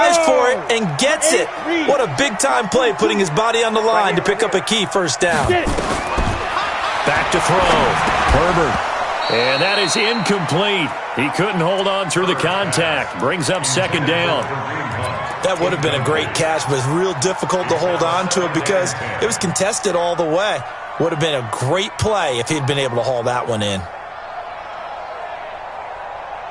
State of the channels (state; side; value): identical; both; correlation 1.00